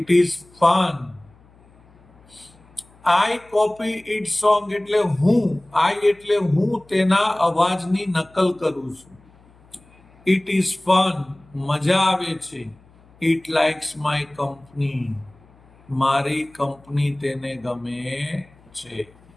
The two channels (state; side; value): noise; left; hum, 28 dB below the sound